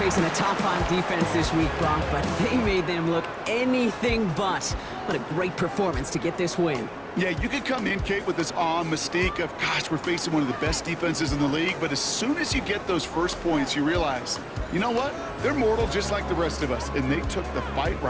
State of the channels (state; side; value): identical; both; correlation 1.00